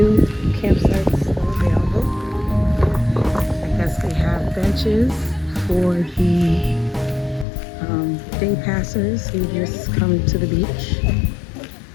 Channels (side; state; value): right; drops out; at 7.5 s